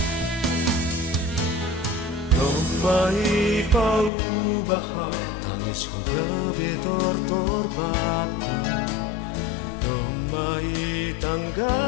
Mai paubaham tangis ko gabi tortorbaku Domai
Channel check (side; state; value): right; drops out; at 4.1 s